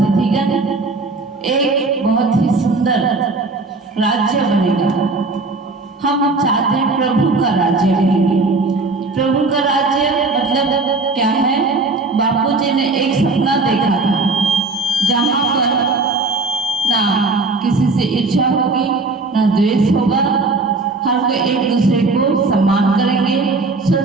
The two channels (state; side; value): quieter; left; 3.5 dB